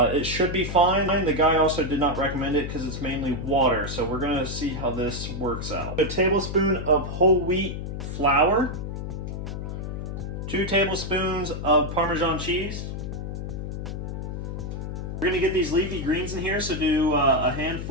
it should be fine. The guy also did not recommend it because it's mainly water. So we're gonna see how this works out. A tablespoon of whole wheat flour. 2 tablespoons of Parmesan cheese. We're gonna get these leafy greens in here, so do a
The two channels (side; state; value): left; noise; hum, 5 dB below the sound